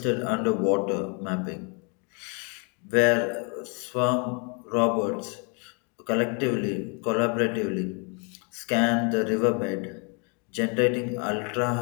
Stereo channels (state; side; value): quieter; right; 35.8 dB